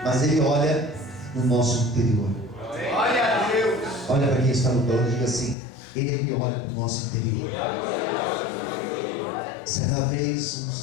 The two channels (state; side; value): drops out; right; at 5.6 s